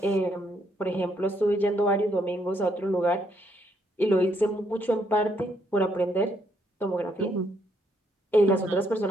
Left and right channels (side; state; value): both; normal; correlation 0.72